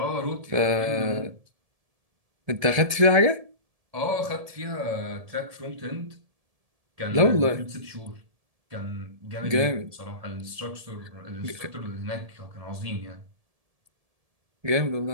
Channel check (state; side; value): late; left; 1.7 ms